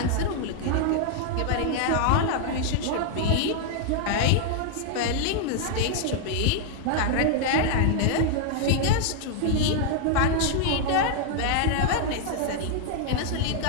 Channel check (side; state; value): both; different; correlation -0.01